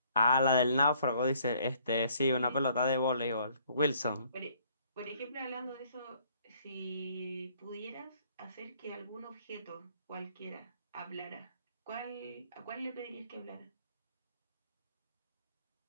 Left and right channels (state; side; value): inverted; both; correlation -0.63